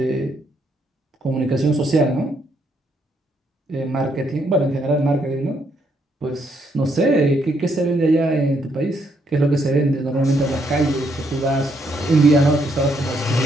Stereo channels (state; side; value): normal; both; correlation 0.74